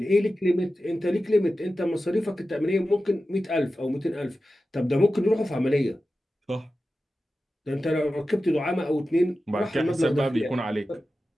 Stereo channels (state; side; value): normal; both; correlation 0.93